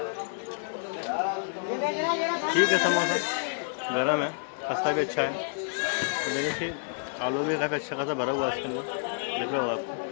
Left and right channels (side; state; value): right; silent; 58 dB below the other